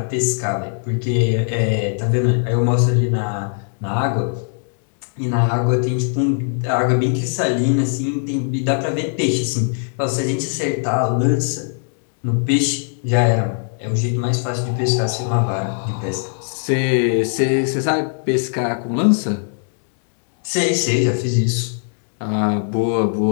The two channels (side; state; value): right; silent; digital silence